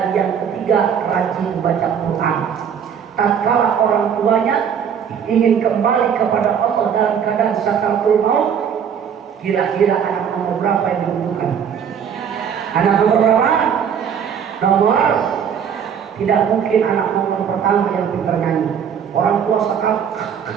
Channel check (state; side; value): quieter; left; 7.8 dB